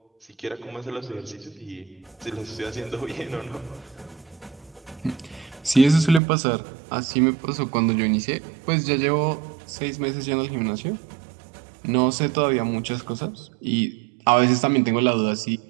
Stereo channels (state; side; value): drops out; left; at 6.2 s